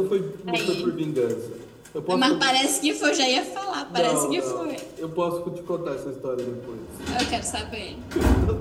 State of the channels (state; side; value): identical; both; correlation 1.00